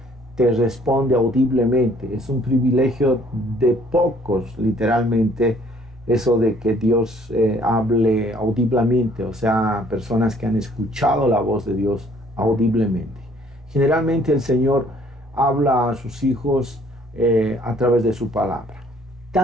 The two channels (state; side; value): normal; both; correlation 0.60